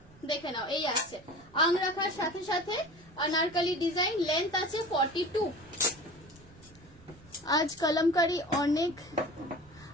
দেখে নাও এই আছে আংরাখার সাথে সাথে अनारकली ডিজাইন, লেন্থ আছে 42। আজ কলমকারি অনেক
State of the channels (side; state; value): right; noise; rumble, 24 dB below the sound